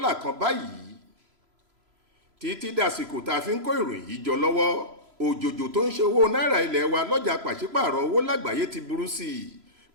kan báyìí. Títí dàsìkò tá a fi ń kó ìròyìn yìí jọ lọ́wọ́, òjòjò tó ń ṣe owó náírà ilẹ̀ wa lọ́jà pàṣípààrọ̀ owó lágbàáyé ti burú sí i,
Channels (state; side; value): late; left; 3.0 ms